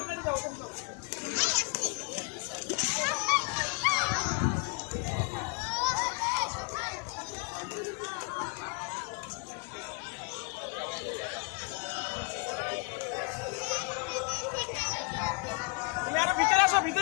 তুমি আরো ভিতরে আসো,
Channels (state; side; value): quieter; right; 31.9 dB